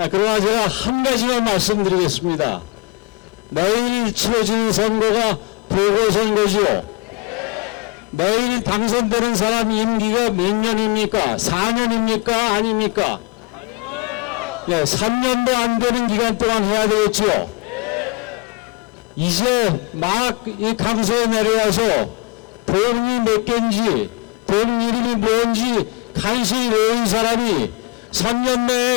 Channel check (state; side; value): quieter; right; 26.5 dB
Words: 그러나 제가 한 가지만 말씀드리겠습니다. 내일 치러지는 선거가 보궐선거지요. 내일 당선되는 사람 임기가 몇 년입니까? 4년입니까? 아닙니까? 네, 3년도 안 되는 기간 동안 해야 되겠지요. 이제 막 이 강서에 내려와서 동이 몇 개인지 동 이름이 뭔지 간신히 외운 사람이 3년